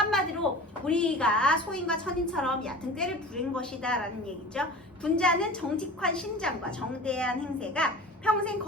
우리가 소인과 천인처럼 얕은 꾀를 부린 것이다 라는 얘기죠. 군자는 정직한 심장과 정대한 행세가 평생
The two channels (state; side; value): normal; both; correlation 0.38